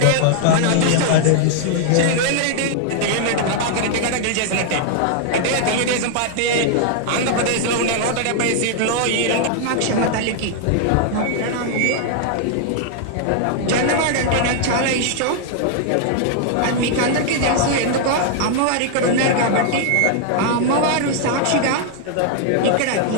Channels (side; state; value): both; different; correlation 0.00